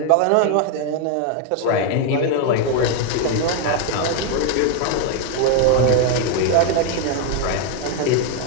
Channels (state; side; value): different; both; correlation 0.01